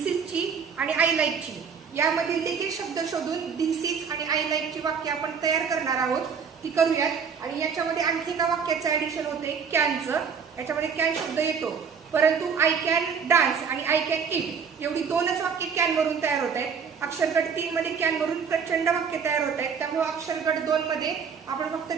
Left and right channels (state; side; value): quieter; left; 6.4 dB